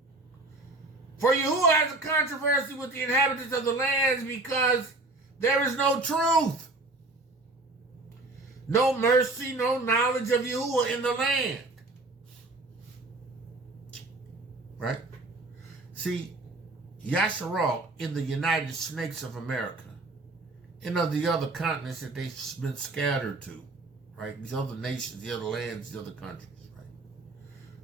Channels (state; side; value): quieter; left; 3.0 dB